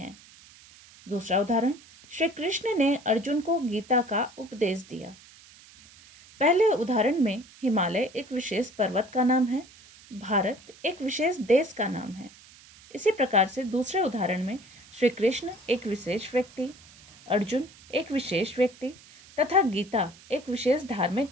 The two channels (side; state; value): right; noise; hiss, 23 dB below the sound